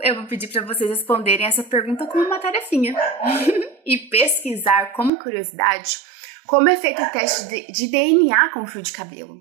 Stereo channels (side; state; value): left; drops out; at 5.1 s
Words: eu vou pedir para vocês responderem essa pergunta com uma tarefinha e pesquisar como curiosidade como é feito o teste de DNA com o fio de cabelo.